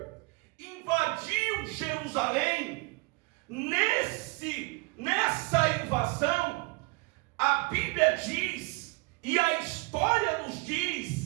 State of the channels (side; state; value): left; quieter; 25.7 dB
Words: invadiu Jerusalém, nessa invasão, a Bíblia diz, e a história nos